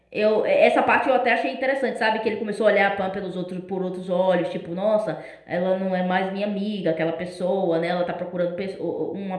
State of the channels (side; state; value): both; identical; correlation 1.00